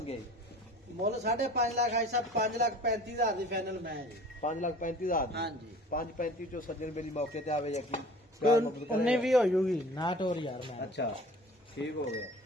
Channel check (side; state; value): both; normal; correlation 0.45